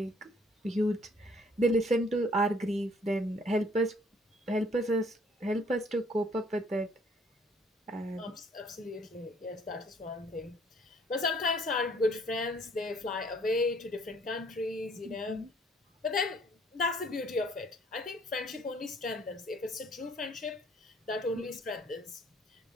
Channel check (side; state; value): both; normal; correlation 0.61